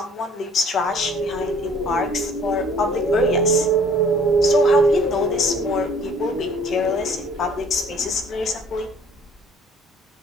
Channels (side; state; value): both; normal; correlation 0.55